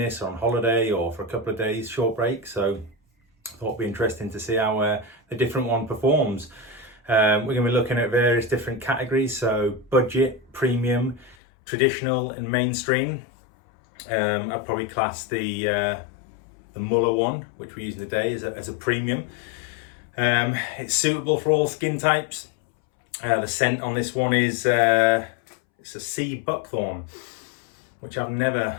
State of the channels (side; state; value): right; drops out; at 11.4 s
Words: on holiday, or for a couple of days, short break. So I thought it'd be interesting to see how the different one performs. We're going to be looking at various different categories, so budget, premium, traditional and mainstream. I'd probably class the Mülhe one, which we're using today, as a premium. It's suitable for all skin types. The scent on this one is it's a sea Buckthorn, which I've